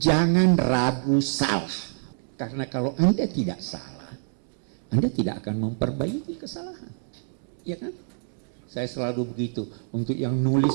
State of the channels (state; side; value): silent; left; digital silence